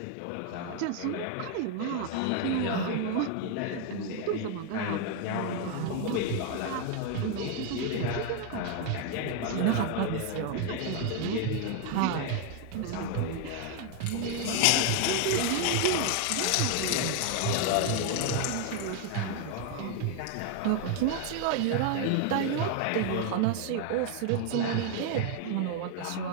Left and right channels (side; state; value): both; different; correlation 0.01